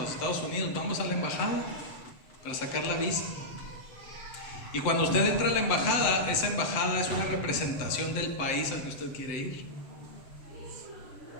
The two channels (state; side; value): late; right; 7.7 ms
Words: Estados Unidos, vamos a la embajada para sacar la visa. Y cuando usted entra a la embajada, esa embajada es una representación del país al que usted quiere ir.